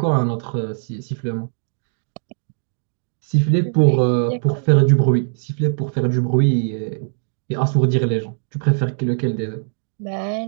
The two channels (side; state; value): left; silent; digital silence